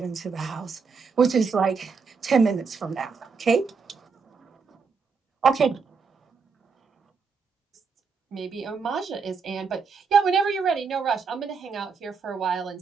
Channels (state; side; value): quieter; left; 5.3 dB